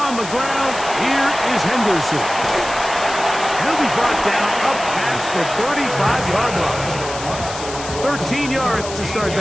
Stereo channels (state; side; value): noise; left; hiss, 11 dB below the sound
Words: the ground, here is Henderson. He'll be brought down up past the 35-yard line. 13 yards to start